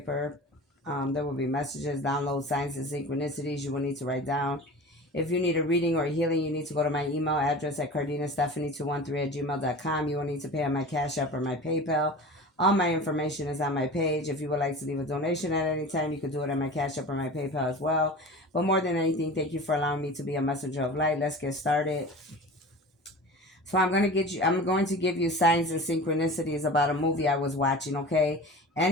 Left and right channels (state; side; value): normal; both; correlation 0.36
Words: There will be messages, download, signs, and synchronicities you will need to write down. If you need a reading or a healing, you need to go to my email address at cardinastephanie213@gmail.com. You will need to pay on my Cash App or my PayPal. All my information is on my page. If you would like to leave a donation at any time, you can do it on my Cash App or my PayPal as well. But more than anything, thank you for allowing me to be a messenger of light. Let's get started. So I'm going to give you signs and synchronicities about a movie I was watching, okay?